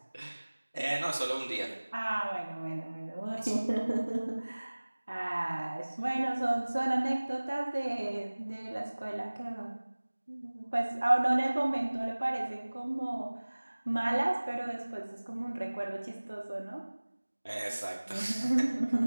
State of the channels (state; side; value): inverted; both; correlation -1.00